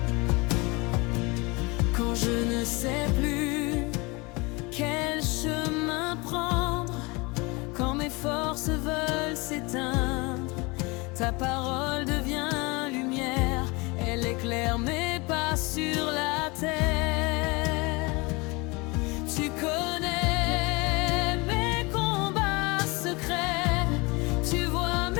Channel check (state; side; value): quieter; right; 26.3 dB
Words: Quand je ne sais plus quel chemin prendre, quand mes forces veulent s'éteindre, ta parole devient lumière, elle éclaire mes pas sur la terre. Tu connais mes combats secrets, tu vois